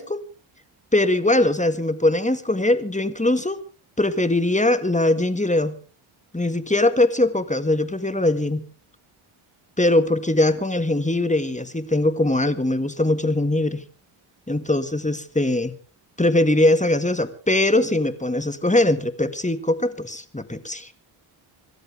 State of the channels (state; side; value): normal; both; correlation 0.61